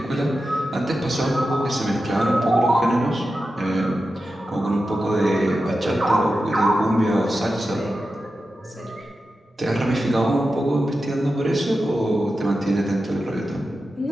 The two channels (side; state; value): both; normal; correlation 0.91